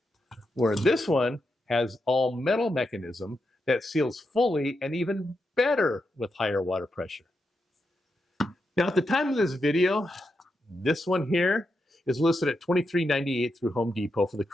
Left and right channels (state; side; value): normal; both; correlation 0.85